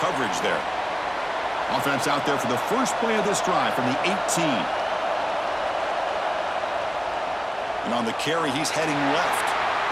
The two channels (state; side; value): identical; both; correlation 1.00